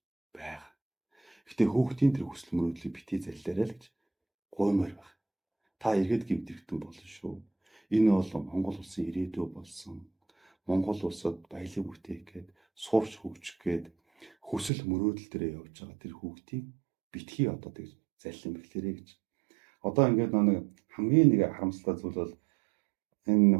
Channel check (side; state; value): left; drops out; at 14.7 s